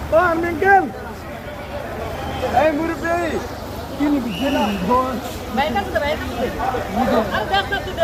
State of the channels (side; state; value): both; identical; correlation 1.00